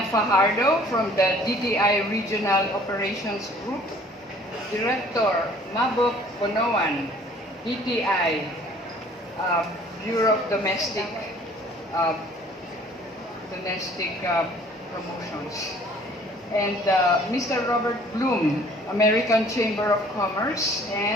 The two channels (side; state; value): both; normal; correlation 0.54